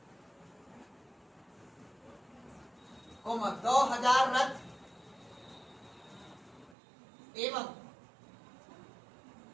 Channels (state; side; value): drops out; left; at 6.8 s